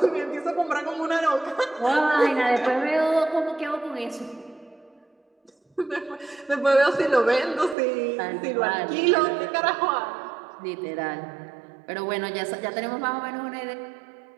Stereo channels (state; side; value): drops out; left; at 7.8 s